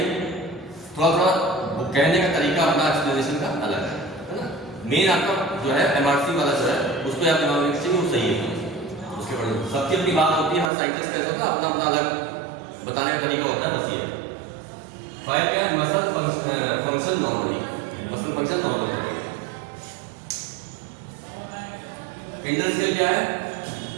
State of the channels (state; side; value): drops out; left; at 10.7 s